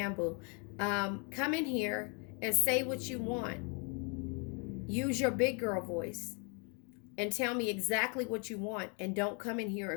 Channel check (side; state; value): right; quieter; 37.0 dB